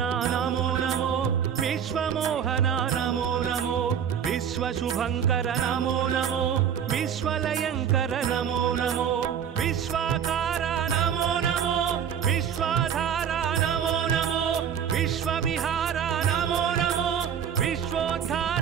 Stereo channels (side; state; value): left; quieter; 8.3 dB